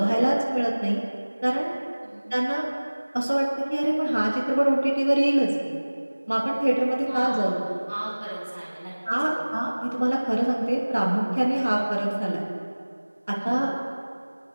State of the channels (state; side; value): inverted; both; correlation -1.00